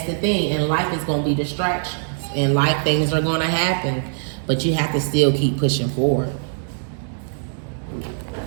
the thing. In life, it's going to be distractions. In life, things are going to happen, but you have to still keep pushing forward.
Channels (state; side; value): silent; left; digital silence